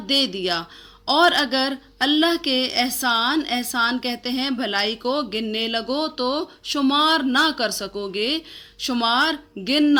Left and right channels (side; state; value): both; identical; correlation 1.00